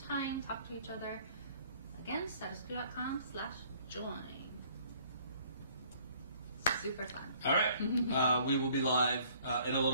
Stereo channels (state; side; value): inverted; both; correlation -0.57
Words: talk to each other. Again, statuscoup.com/join. Super fun. All right. We will be live in a